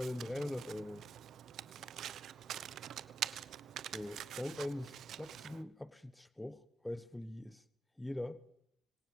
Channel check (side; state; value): both; normal; correlation 0.85